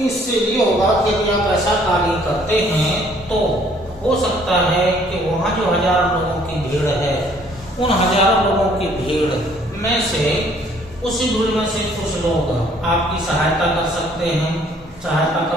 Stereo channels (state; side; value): normal; both; correlation 0.61